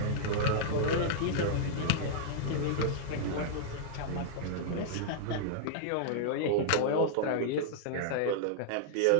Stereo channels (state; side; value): different; both; correlation -0.01